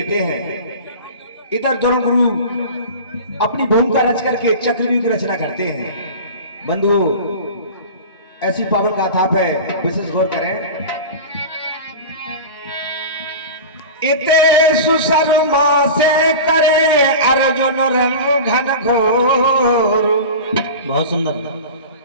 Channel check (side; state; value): both; inverted; correlation -0.32